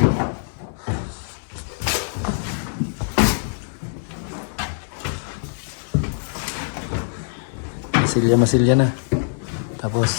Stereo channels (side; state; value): right; silent; 63 dB below the other